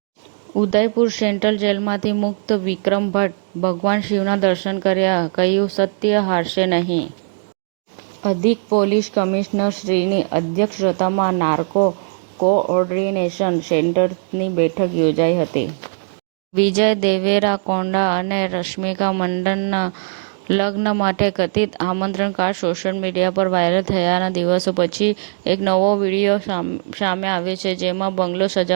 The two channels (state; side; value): silent; left; digital silence